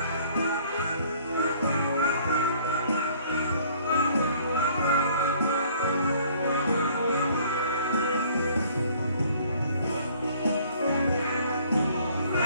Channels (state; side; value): inverted; both; correlation -0.57